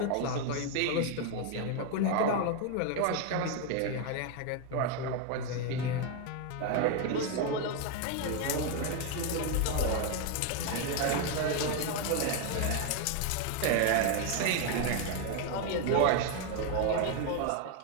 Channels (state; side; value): different; both; correlation 0.01